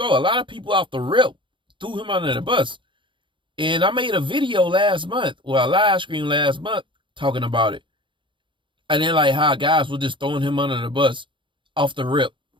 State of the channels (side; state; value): left; late; 0.24 ms